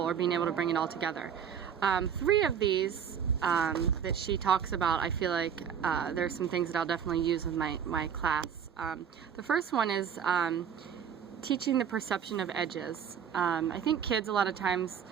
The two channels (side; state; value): left; quieter; 7.9 dB